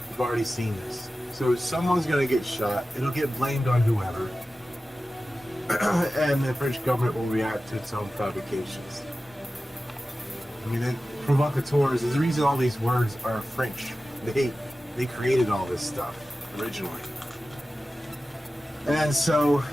We've already seen this. So someone's going to get shot. It'll get blamed on whoever. And the French government will react to its own provocations. I mean, provocateurs is the reason all these words are French. They created all this stuff originally. And so,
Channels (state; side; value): normal; both; correlation 0.95